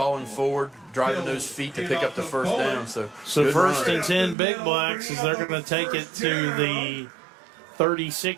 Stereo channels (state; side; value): drops out; left; at 4.4 s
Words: forward, driving those feet to pick up the first down. So 1st and 10 Big Blacks as they're going to take it to the